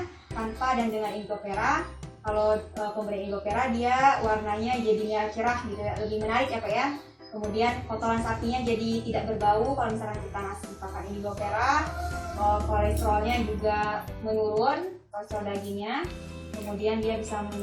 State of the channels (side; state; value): both; identical; correlation 1.00